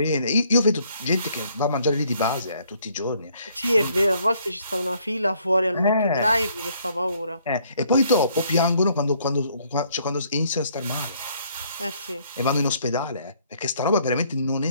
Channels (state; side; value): inverted; both; correlation -0.65